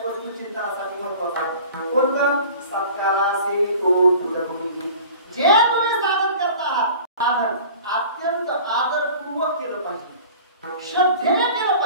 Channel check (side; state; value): both; inverted; correlation -0.43